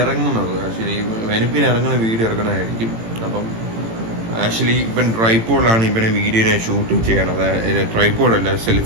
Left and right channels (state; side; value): late; left; 18 ms